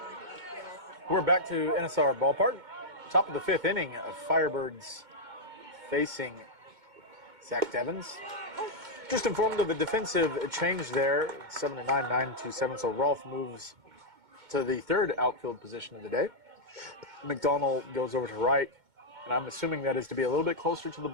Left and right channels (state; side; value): late; left; 2.2 ms